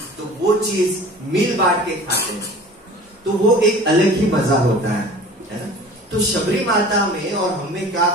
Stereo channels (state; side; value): normal; both; correlation 0.43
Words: तो वो चीज मिल बांट के खाते हैं, तो वो एक अलग ही मजा होता है ना? तो शबरी माता में और हमें क्या